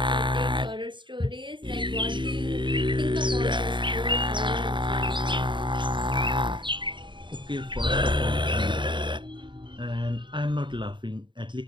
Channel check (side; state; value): left; late; 0.23 ms